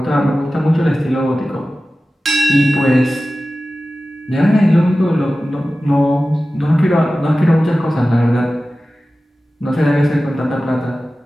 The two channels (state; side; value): normal; both; correlation 0.95